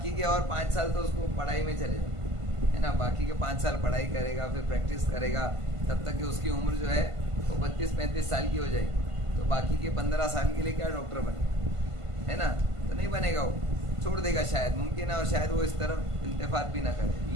کے اور 5 سال تو اس کو پڑھائی میں چلے جائیں، ہے نا، باقی کے 5 سال پڑھائی کرے گا، پھر پریکٹس کرے گا، تب تک کہ اس کی عمر جو ہے وہ 32-35 سال کی ہو جائے گی، تو باقی کے 15 سال کے لیے کیا ڈاکٹر بنے، ہے نا، تو نہیں بنے گا، وہ چھوڑ دے گا، شاید ممکن ہے، اور شاید وہ اس طرف التفات بھی نہ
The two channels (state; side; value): late; left; 1.5 ms